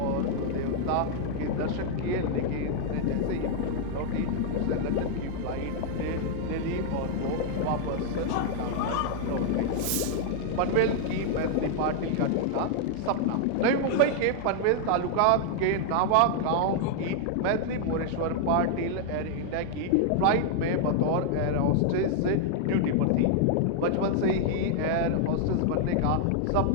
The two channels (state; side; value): different; both; correlation 0.00